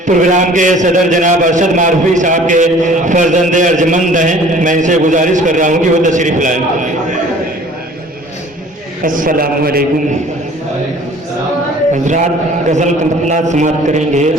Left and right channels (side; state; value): both; normal; correlation 0.50